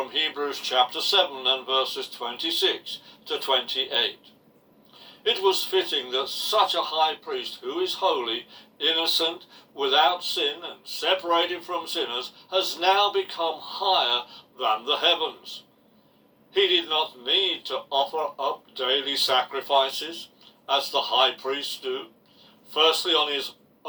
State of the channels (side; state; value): both; identical; correlation 1.00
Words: Hebrews chapter 7 and verses 26 to 28. It was fitting that such a high priest who is holy, innocent, without sin and separated from sinners has now become higher than the heavens. He did not need to offer up daily sacrifices as the high priests do, firstly